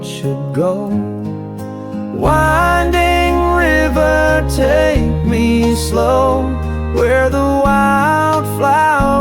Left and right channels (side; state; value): both; identical; correlation 1.00